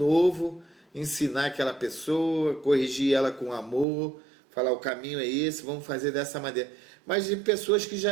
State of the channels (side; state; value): left; drops out; at 3.9 s